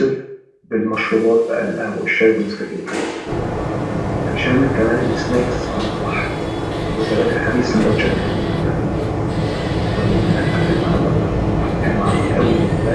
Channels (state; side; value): identical; both; correlation 1.00